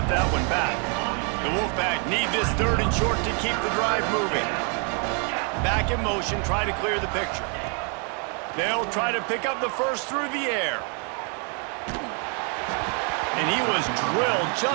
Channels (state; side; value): quieter; left; 38.5 dB